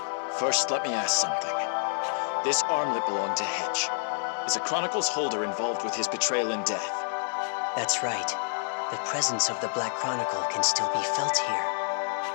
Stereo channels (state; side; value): silent; right; digital silence